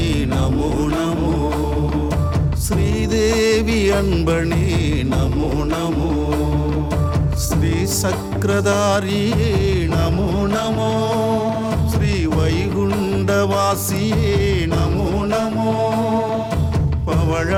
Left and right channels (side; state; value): both; identical; correlation 1.00